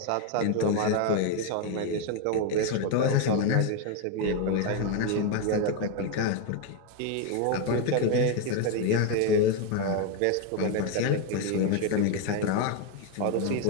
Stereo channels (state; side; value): different; both; correlation 0.02